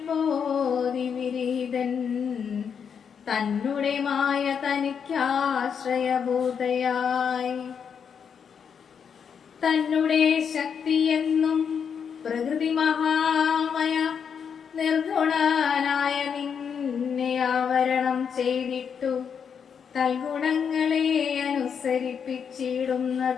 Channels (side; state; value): right; quieter; 7.0 dB